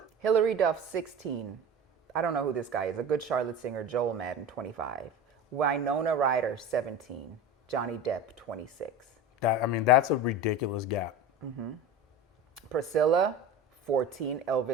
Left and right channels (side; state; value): both; normal; correlation 0.31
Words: Hillary Duff, 16. I don't know who this guy is. A good Charlotte singer, Joel Madden, 25. Winona Ryder, 17. Johnny Depp, 26. That's a ridiculous gap. Mm-hmm. Priscilla, 14.